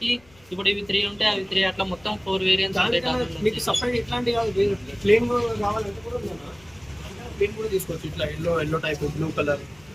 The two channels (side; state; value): left; noise; rumble, 28 dB below the sound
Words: ఇప్పుడు ఇవి 3 ఉంటాయి, అవి 3 అట్లా మొత్తం 4 వేరియంట్స్ ఉంటాయి. మీకు సపరేట్ ఇట్లాంటి కాదు, ప్లేన్ కావాలంటే కూడా ఉందన్న. ప్లేన్ కూడా తీసుకోవచ్చు. ఇట్లా yellow type, blue colour,